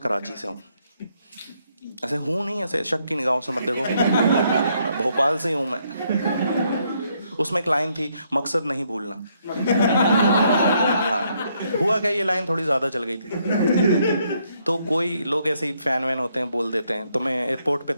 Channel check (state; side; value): inverted; both; correlation -0.73